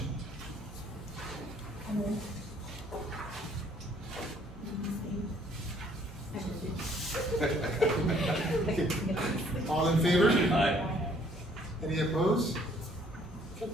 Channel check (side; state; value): both; normal; correlation 0.62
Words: All in favor? Aye. Any opposed? Okay,